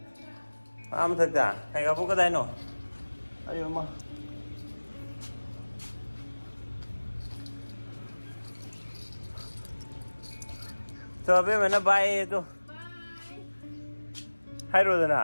am thak da ai ga bo ka dai no ayo ma to be mena bai to hai ro da na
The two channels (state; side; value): inverted; both; correlation -1.00